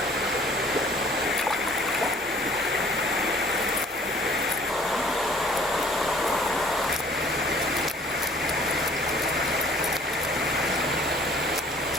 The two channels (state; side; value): normal; both; correlation 0.54